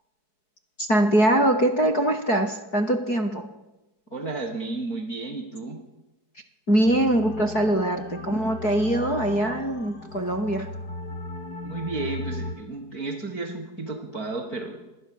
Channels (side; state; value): right; late; 4.6 ms